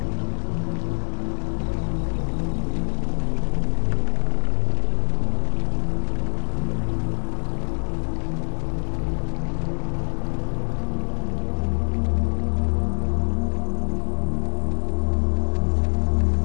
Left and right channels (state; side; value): silent; right; digital silence